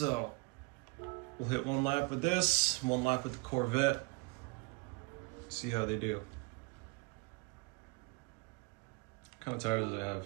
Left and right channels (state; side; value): quieter; left; 28.8 dB